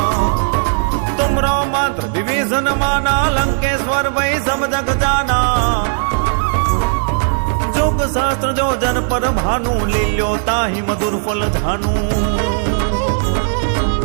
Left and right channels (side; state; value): left; silent; 64 dB below the other